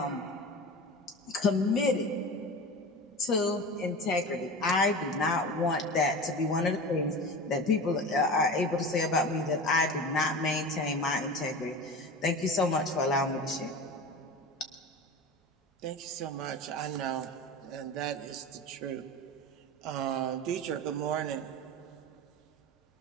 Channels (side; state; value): both; normal; correlation 0.30